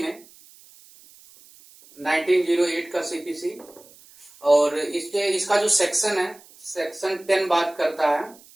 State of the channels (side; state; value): right; noise; hiss, 25 dB below the sound